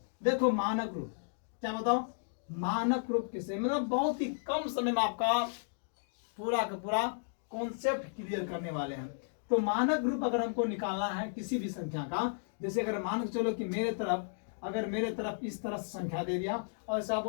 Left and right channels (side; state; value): right; silent; digital silence